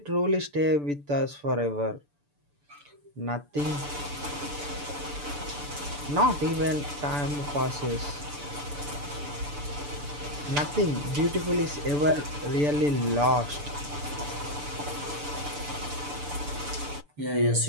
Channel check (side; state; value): left; late; 6.9 ms